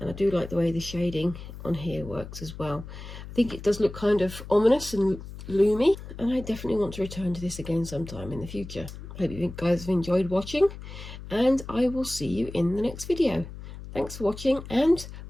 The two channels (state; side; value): noise; left; hum, 12 dB below the sound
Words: I do like the way the shading on here works as well. I think it does look kind of ominous and loomy, and I definitely want to return to this again sometime in the future. Hope you guys have enjoyed watching, and I will see you in the next video. Thanks for watching, and